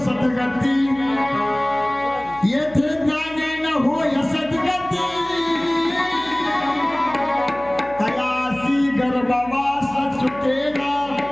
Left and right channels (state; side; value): noise; left; hum, 22 dB below the sound